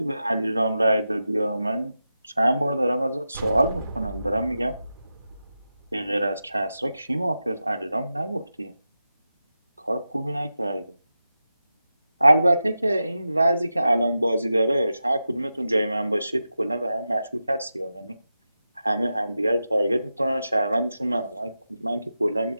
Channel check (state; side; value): inverted; both; correlation -0.91